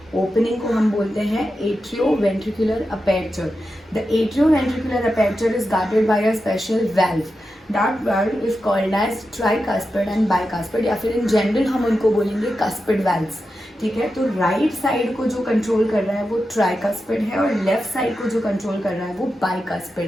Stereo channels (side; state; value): both; normal; correlation 0.90